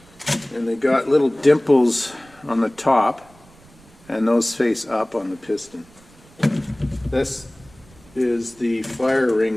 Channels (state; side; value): noise; right; rumble, 26 dB below the sound